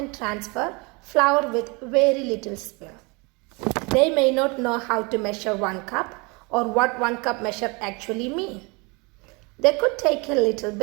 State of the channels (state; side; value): quieter; left; 28.7 dB